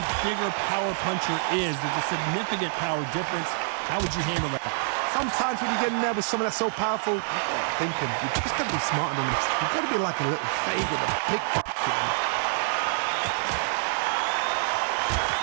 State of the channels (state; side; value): silent; left; digital silence